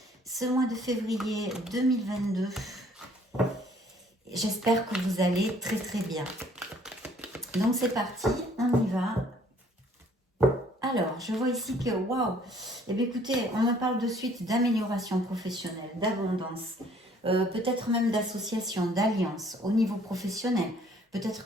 Ce mois de février 2022. J'espère que vous allez très très bien. Donc c'est parti, on y va. Alors, je vois ici que, waouh, eh bien écoutez, on me parle de suite d'amélioration professionnelle, d'abondance, peut-être même d'association, d'alliance au niveau professionnel. Peut-être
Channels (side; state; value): both; normal; correlation 0.59